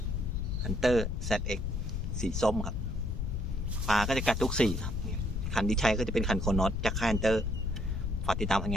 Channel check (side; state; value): left; noise; rumble, 1 dB below the sound